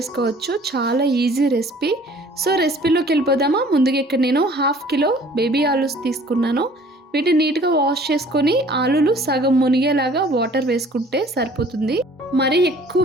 చాలా ఈజీ రెసిపీ. సో రెసిపీలోకి వెళ్ళిపోదామా? ముందుగా ఇక్కడ నేను 1/2 కిలో బేబీ ఆలూస్ తీసుకున్నాను. వీటిని నీట్గా వాష్ చేసుకొని ఆలూలు సగం మునిగేలాగా వాటర్ వేసుకుంటే సరిపోతుంది. మరీ ఎక్కువ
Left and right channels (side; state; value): both; normal; correlation 0.52